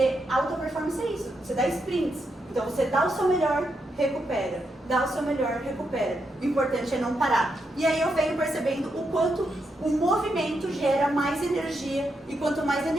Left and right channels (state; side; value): normal; both; correlation 0.82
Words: alta performance é isso. Você dá sprints. Então você dá o seu melhor, recupera. Dá o seu melhor, recupera. O importante é não parar. E aí eu venho percebendo o quanto o movimento gera mais energia. E quanto mais